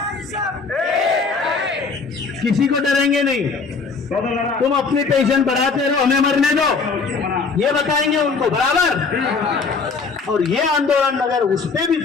किसी को डरेंगे नहीं। तुम अपनी पेंशन बढ़ाते रहो, हमें मरने दो, ये बताएंगे उनको, बराबर? और ये आंदोलन अगर उस पे भी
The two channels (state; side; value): quieter; right; 4.7 dB